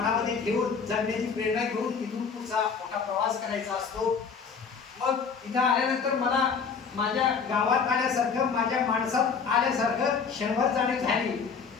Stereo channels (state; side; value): quieter; right; 5.9 dB